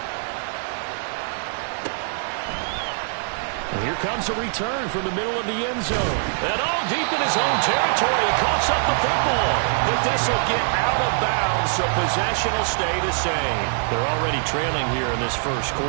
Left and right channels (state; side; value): silent; left; digital silence